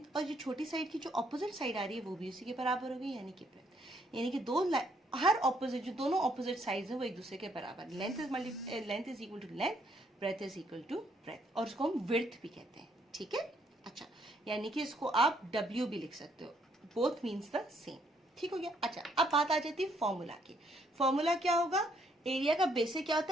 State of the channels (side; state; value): both; normal; correlation 0.70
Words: और जो छोटी साइड की जो ऑपोजिट साइड आ रही है वो भी उसी के बराबर होगी, यानी कि ब्रेथ। यानी कि दो हर ऑपोजिट जो दोनों ऑपोजिट साइड्स हैं वो एक दूसरे के बराबर। Length is equal to length, breadth is equal to breadth, और उसको हम विड्थ भी कहते हैं। ठीक है, अच्छा, यानी कि इसको आप W भी लिख सकते हो, बोथ मीन्स द सेम। ठीक हो गया। अच्छा, अब बात आ जाती है फॉर्मूला की। फॉर्मूला क्या होगा, एरिया का बेसिक क्या